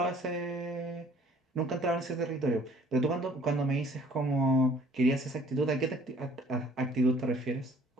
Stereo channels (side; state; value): both; normal; correlation 0.57